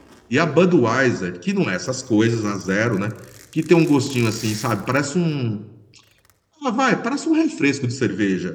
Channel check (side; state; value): both; identical; correlation 1.00